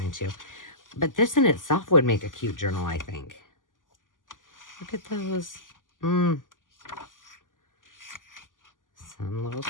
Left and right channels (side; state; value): right; late; 0.88 ms